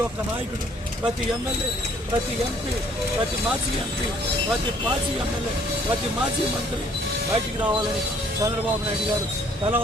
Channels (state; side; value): normal; both; correlation 0.61